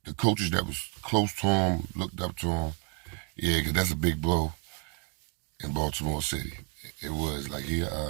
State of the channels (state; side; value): quieter; left; 38.5 dB